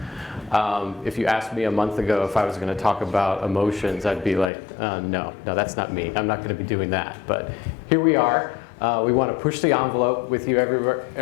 If you asked me a month ago if I was going to talk about emotions, I'd be like, no, that's not me. I'm not going to be doing that. But here we are. We want to push the envelope with you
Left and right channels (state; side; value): drops out; right; at 4.5 s